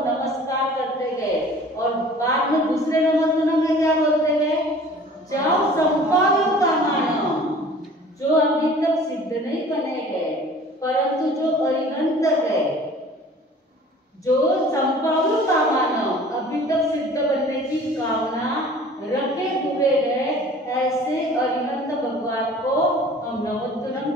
नमस्कार करते गए। और बाद में दूसरे नमोतुनम में क्या बोलते गए? जाओ संपादन का मानव, जो अभी तक सिद्ध नहीं बने गए परंतु जो अरिहंत है, जो संपादन का मानव अभी तक सिद्ध बनने की कामना रखे हुए हैं, ऐसे अरिहंत भगवान को हम नमोतुनम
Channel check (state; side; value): normal; both; correlation 0.47